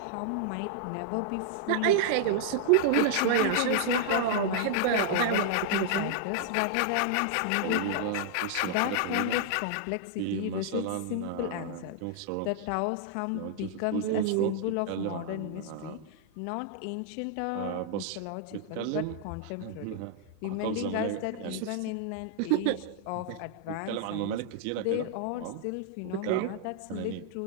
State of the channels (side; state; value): both; different; correlation -0.01